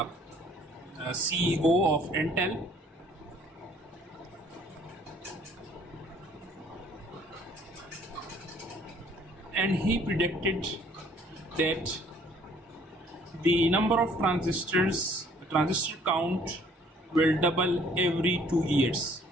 CEO of Intel. And he predicted that the number of transistors, transistor count, will double every 2 years.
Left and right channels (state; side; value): normal; both; correlation 0.59